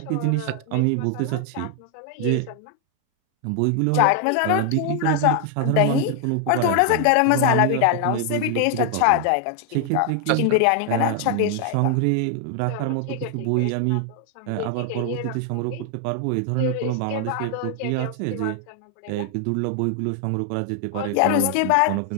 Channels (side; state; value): both; different; correlation 0.00